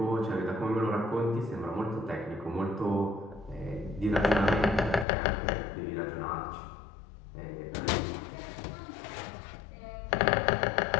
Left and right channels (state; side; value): drops out; right; at 5.1 s